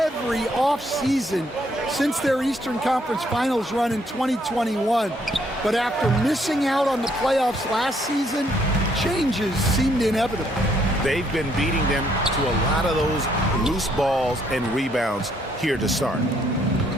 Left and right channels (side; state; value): both; normal; correlation 0.69